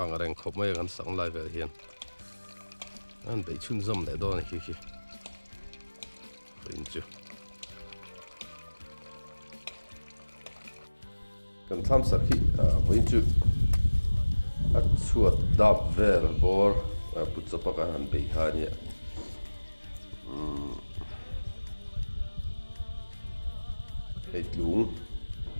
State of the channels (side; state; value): both; inverted; correlation -1.00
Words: ang reng khop mai kan sang lai vel hian an bei chun zom le don hi voin chu kan Thlamsak hi voin chu a chuat dap vel bor putchapa kan han bei ha nia hei tlung